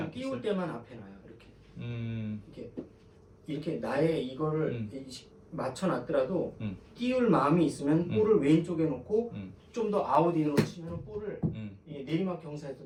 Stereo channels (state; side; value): identical; both; correlation 1.00